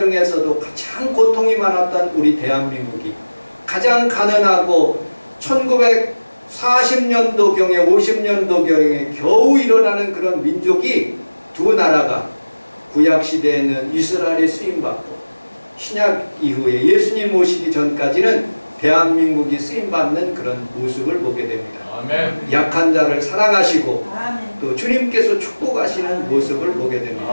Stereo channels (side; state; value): both; inverted; correlation -1.00